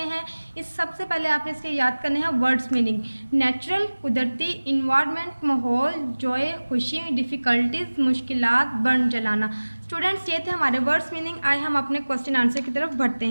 हैं। इस सबसे पहले आपने इसके याद करने हैं वर्ड्स मीनिंग। नेचुरल, कुदरती, इन्वायरमेंट, माहौल, जॉय, खुशी, डिफ़िकल्टीज, मुश्किलात, बर्न जलाना। स्टूडेंट्स, ये थे हमारे वर्ड्स मीनिंग। आए हम अपने क्वेश्चन आंसर की तरफ बढ़ते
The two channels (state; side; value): inverted; both; correlation -1.00